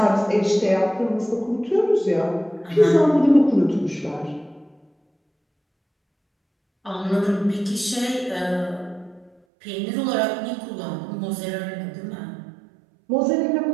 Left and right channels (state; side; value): drops out; left; at 9.3 s